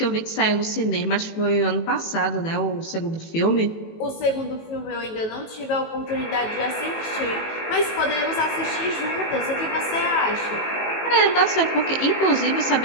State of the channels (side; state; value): right; late; 18 ms